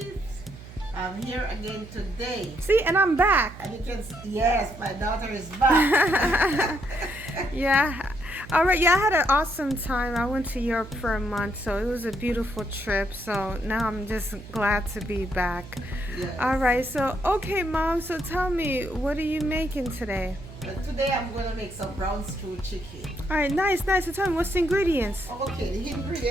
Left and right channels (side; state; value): right; noise; hum, 16 dB below the sound